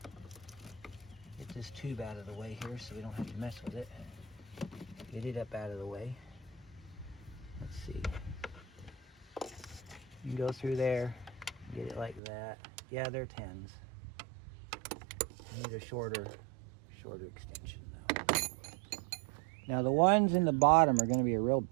Get this tube out of the way here so we don't have to mess with it. Get it up out of the way. Let's see. You can go through there, get it like that. Yeah, they're 10s. I need a shorter extension though. Now the ones in the bottom are going to be a real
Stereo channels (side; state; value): left; drops out; at 12.2 s